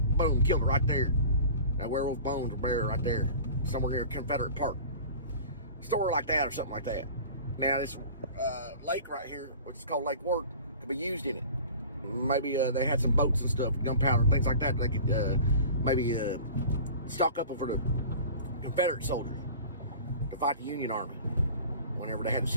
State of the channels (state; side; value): inverted; both; correlation -0.40